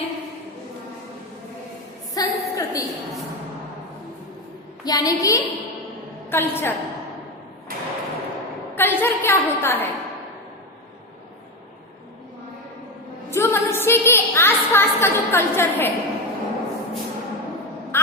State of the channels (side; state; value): both; normal; correlation 0.15